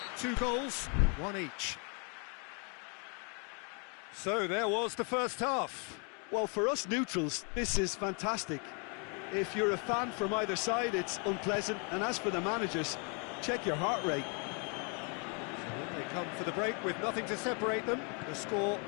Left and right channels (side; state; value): right; quieter; 36.4 dB